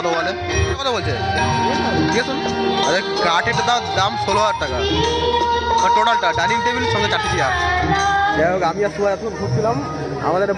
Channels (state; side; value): identical; both; correlation 1.00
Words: বলে, কত বলছে জিজ্ঞেস করুন। আরে কাঠের দাম 16,000 টাকা, আর টোটালটা ডাইনিং টেবিল সঙ্গে 4টি চেয়ার। যাই হোক, আমি আর সুভাষ এখন ঘুরছিলাম। আমাদের একটা